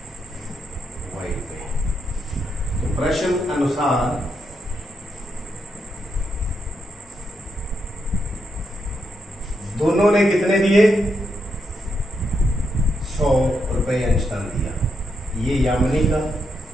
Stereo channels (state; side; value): normal; both; correlation 0.81